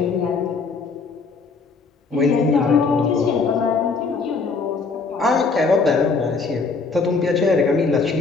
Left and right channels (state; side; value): quieter; right; 4.5 dB